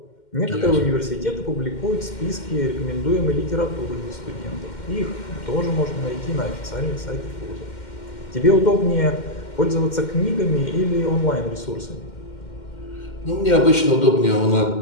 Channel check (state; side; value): late; right; 2.1 ms